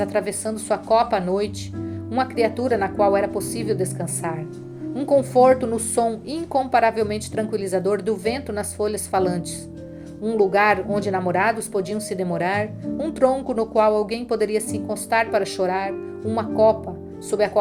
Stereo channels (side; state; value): both; identical; correlation 1.00